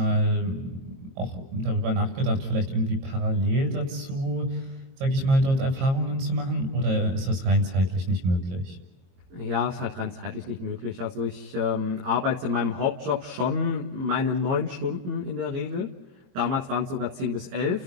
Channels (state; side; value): late; left; 22 ms